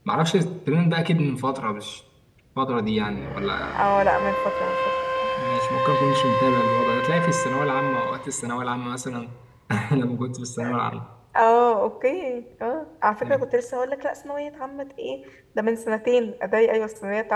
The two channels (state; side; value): identical; both; correlation 1.00